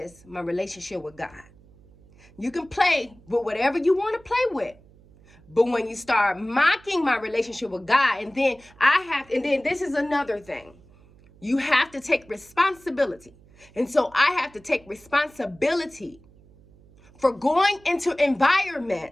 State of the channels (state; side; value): noise; right; hum, 26 dB below the sound